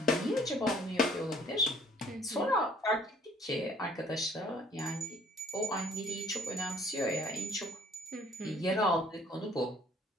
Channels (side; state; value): both; normal; correlation 0.59